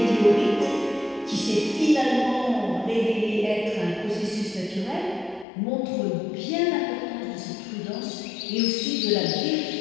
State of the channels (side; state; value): right; drops out; at 5.5 s